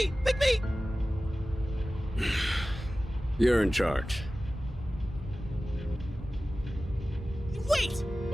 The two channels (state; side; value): normal; both; correlation 0.96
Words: me! You're in charge. Wait!